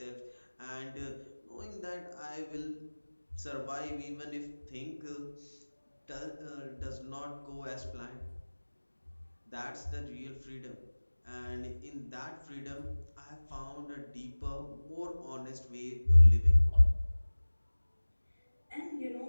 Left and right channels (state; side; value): inverted; both; correlation -1.00